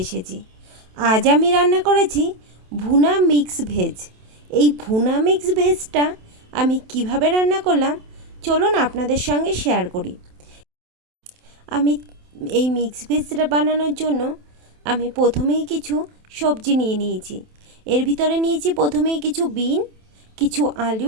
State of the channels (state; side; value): late; left; 27 ms